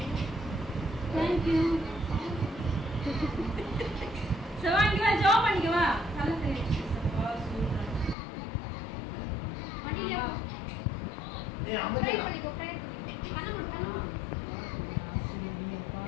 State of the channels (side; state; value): right; drops out; at 8.2 s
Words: தேங்க்யூ. சவாங்க வா, ஜோ பண்ணிக்க வா. நல்லா தெரியுது. மடியில ஏய் அம்மா ட்ரை பண்ணிக்கோ. பண்ண முடியுமா?